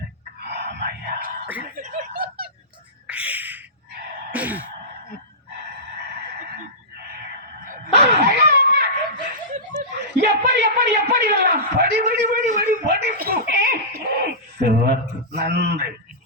ஆமையா எப்படி எப்படி எப்படி படி படி படி படி படிப்பு சிறப்பு. நன்றி.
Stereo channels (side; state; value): both; normal; correlation -0.17